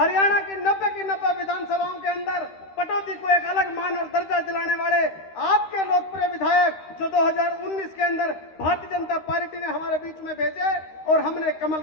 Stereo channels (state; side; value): late; right; 13 ms